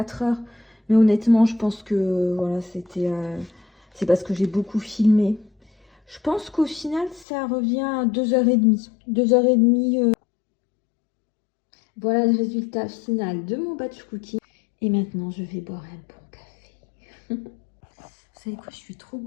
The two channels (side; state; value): right; drops out; at 7.2 s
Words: heures. Mais honnêtement, je pense que voilà, c'est parce que j'ai beaucoup filmé. Je pense qu'au final, ça revient à 2h30. 2h30. Voilà le résultat final de mon batch cooking. Et maintenant, je vais boire un bon café. Vous savez quoi, je suis trop